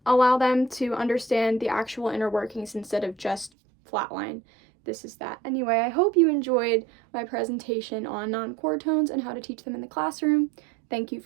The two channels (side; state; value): left; drops out; at 3.5 s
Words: Allow them to understand the actual inner workings instead of just flatline, this is that. Anyway, I hope you enjoyed my presentation on non-chord tones and how to teach them in the classroom. Thank you